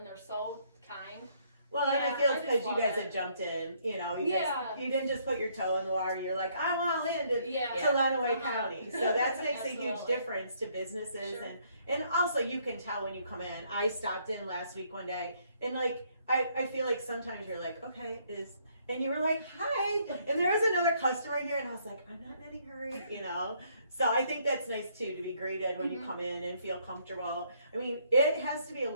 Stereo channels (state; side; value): inverted; both; correlation -0.68